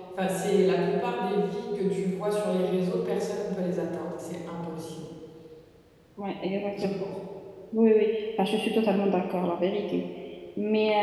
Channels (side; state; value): both; identical; correlation 1.00